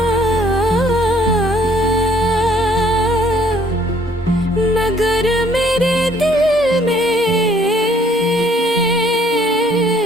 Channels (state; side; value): normal; both; correlation 0.61